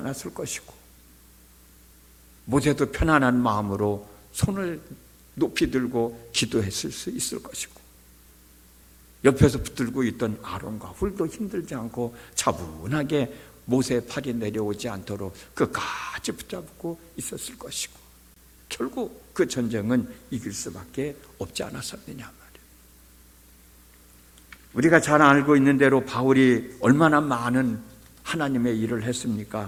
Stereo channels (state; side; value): identical; both; correlation 1.00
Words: 것이고 모세도 편안한 마음으로 손을 높이 들고 기도했을 수 있을 것이고 옆에서 붙들고 있던 아론과 훌도 힘들지 않고 차분하게 모세의 팔이 내려오지 않도록 끝까지 붙잡고 있었을 것이고 결국 그 전쟁은 이길 수밖에 없지 않았었느냐 말이에요. 우리가 잘 알고 있는 대로 바울이 얼마나 많은 하나님의 일을